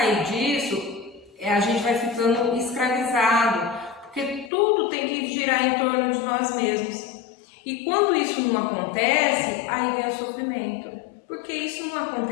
disso, a gente vai ficando escravizado, porque tudo tem que girar em torno de nós mesmos. E quando isso não acontece, aí vem o sofrimento, porque isso não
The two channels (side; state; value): right; drops out; at 4.5 s